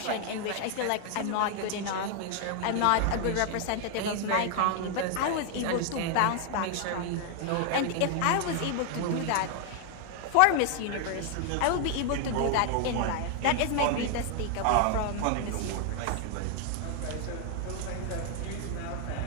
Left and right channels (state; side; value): different; both; correlation 0.00